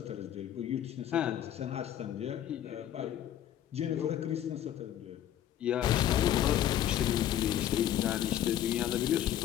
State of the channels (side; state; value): right; quieter; 11.3 dB